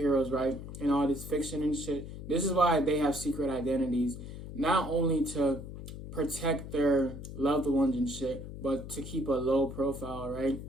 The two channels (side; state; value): left; noise; hum, 10 dB below the sound